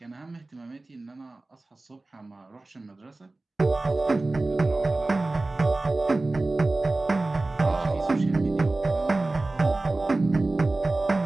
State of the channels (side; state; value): left; quieter; 3.1 dB